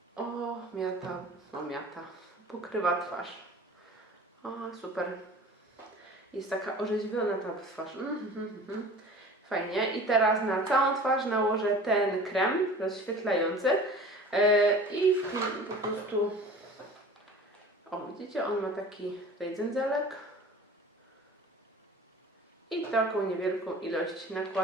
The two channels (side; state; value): both; normal; correlation 0.42